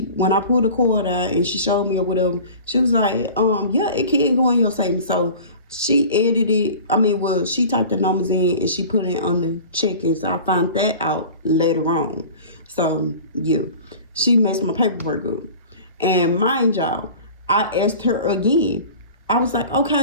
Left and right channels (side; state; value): both; inverted; correlation -0.40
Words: I pulled the card out and she showed me or whatever, she was like, yeah, it can go in your savings. So she she typed the numbers in and she put it on the check-in. So I found that out later on. So yeah, she messed my paperwork up. And mind y'all, I asked her again. I was like,